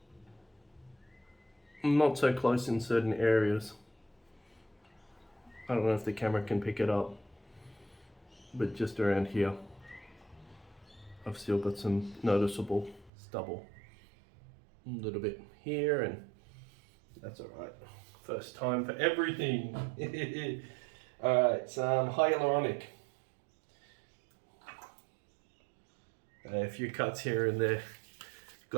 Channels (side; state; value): left; drops out; at 13.1 s